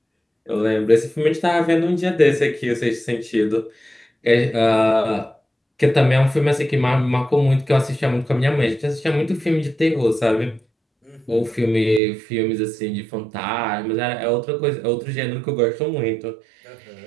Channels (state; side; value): drops out; left; at 12.0 s